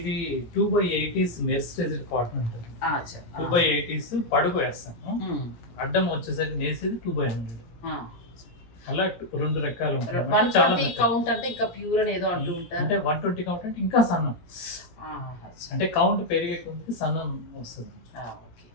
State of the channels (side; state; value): right; late; 17 ms